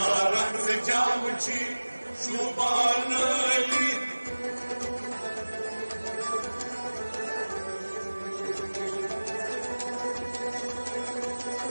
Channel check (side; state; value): both; inverted; correlation -1.00